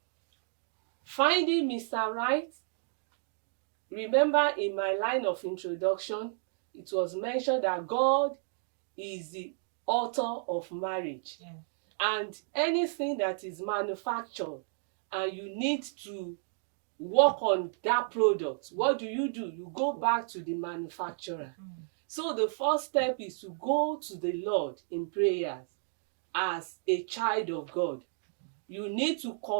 Finding Mr. Right, remember in my line of introduction, it was mentioned that God is the author of marriage. Yeah. And anything that is manufactured and you need to work on that product, what do? You go back to the manufacturer. So the first step is to go to the Lord in prayers as a child of God. You need to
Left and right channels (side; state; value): left; silent; digital silence